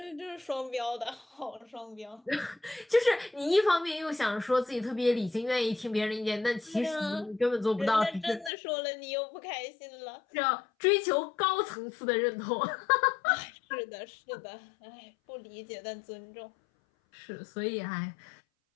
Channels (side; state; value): right; drops out; at 8.5 s